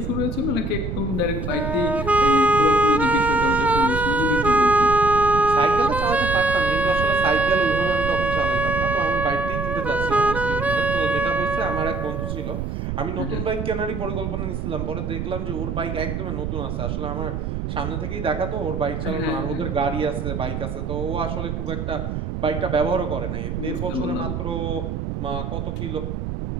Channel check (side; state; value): right; noise; rumble, 4 dB below the sound